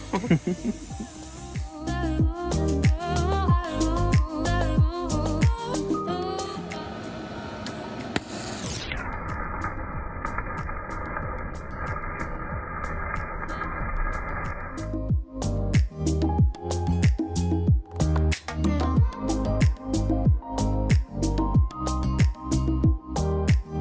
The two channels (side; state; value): both; identical; correlation 1.00